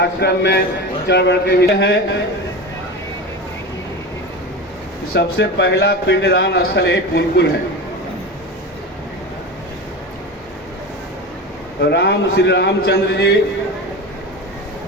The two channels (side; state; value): both; normal; correlation 0.27